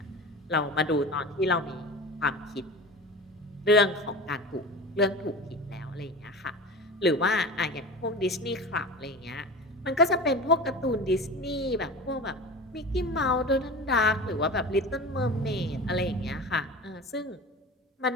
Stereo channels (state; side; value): normal; both; correlation 0.32